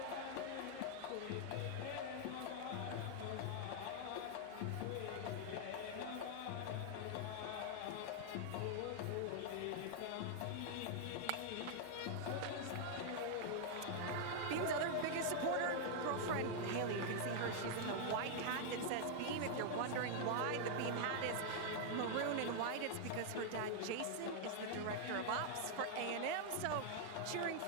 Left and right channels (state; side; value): different; both; correlation 0.00